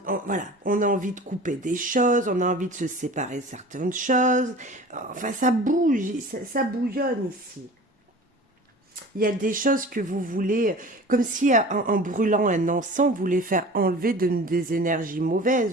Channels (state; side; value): normal; both; correlation 0.40